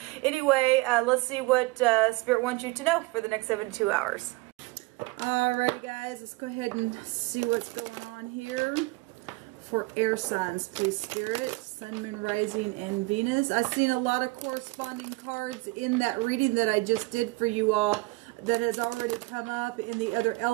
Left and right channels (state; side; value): quieter; left; 23.6 dB